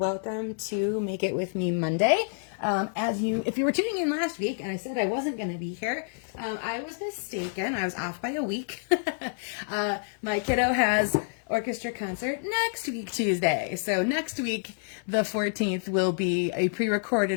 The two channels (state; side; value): silent; right; digital silence